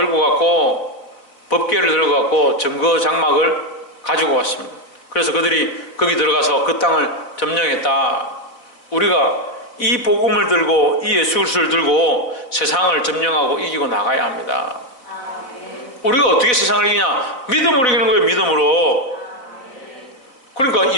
갔고 법궤를 들고 갔고 증거 장막을 가지고 왔습니다. 그래서 그들이 거기 들어가서 그 땅을 점령했다. 우리가 이 복음을 들고 이 예수 그리스도를 들고 세상을 점령하고 이기고 나가야 합니다. 우리가 어떻게 세상을 이기냐? 믿음으로 이기는 거예요. 믿음으로. 그러니까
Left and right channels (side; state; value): right; late; 4.0 ms